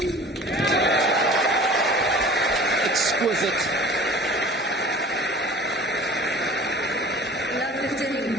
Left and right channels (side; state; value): both; normal; correlation 0.43